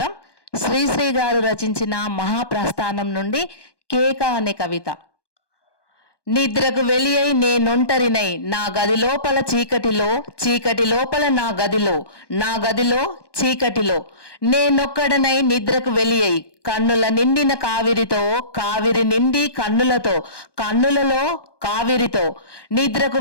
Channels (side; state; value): right; late; 1.2 ms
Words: శ్రీశ్రీ గారు రచించిన మహాప్రస్థానం నుండి కేక అనే కవిత. నిద్రకు వెలియై నేనొంటరినై నా గది లోపల చీకటిలో, చీకటి లోపల నా గదిలో, నా గదిలో చీకటిలో నేనొక్కడనై నిద్రకు వెలియై కన్నుల నిండిన కావిరితో, కావిరి నిండి కన్నులతో, కన్నులలో కావిరితో నిద్రకు